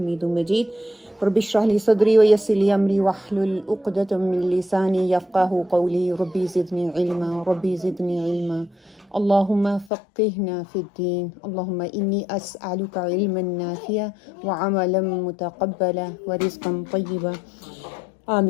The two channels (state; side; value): drops out; right; at 9.9 s